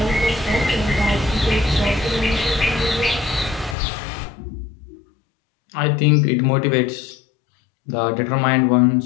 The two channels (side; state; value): right; drops out; at 3.8 s